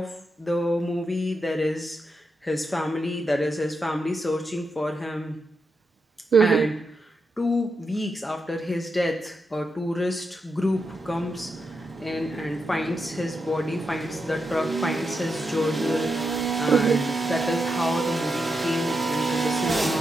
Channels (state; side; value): normal; both; correlation 0.85